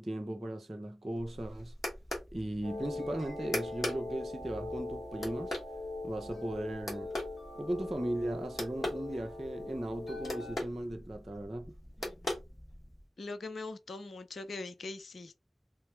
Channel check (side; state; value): both; normal; correlation 0.93